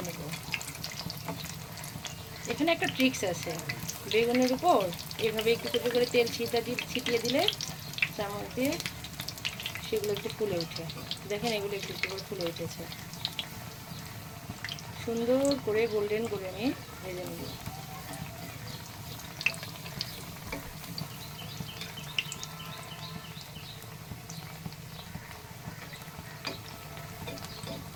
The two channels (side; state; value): both; identical; correlation 1.00